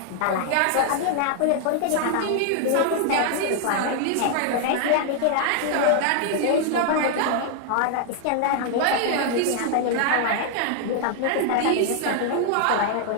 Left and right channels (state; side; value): different; both; correlation 0.00